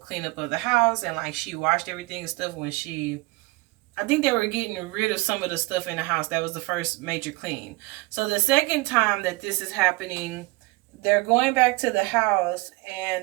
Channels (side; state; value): left; quieter; 23.6 dB